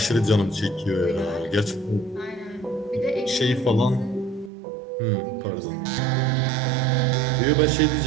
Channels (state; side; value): drops out; left; at 4.5 s